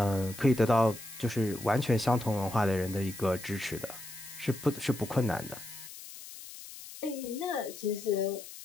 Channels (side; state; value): left; noise; hiss, 14 dB below the sound